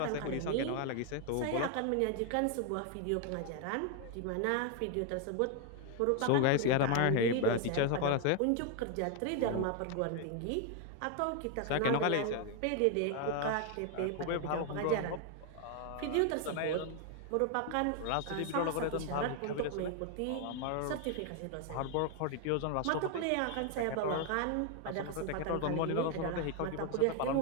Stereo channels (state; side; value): different; both; correlation 0.00